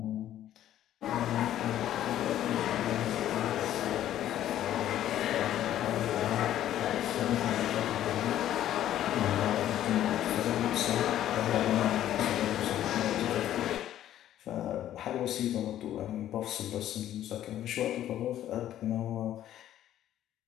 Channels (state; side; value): quieter; right; 12.1 dB